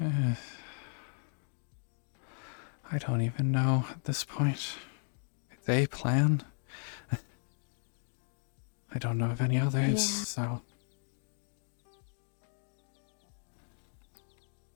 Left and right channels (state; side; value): silent; right; 54 dB below the other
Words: I don't even know at this point. It's a plan. I don't know of any others, Yeah. so.